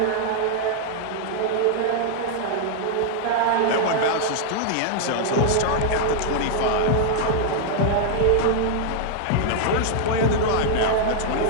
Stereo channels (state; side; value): different; both; correlation -0.01